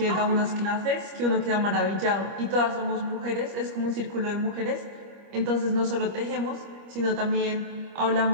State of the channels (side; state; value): left; late; 25 ms